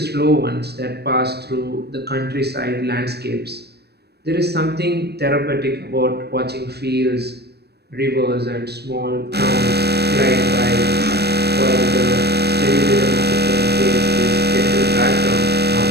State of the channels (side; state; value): left; late; 0.47 ms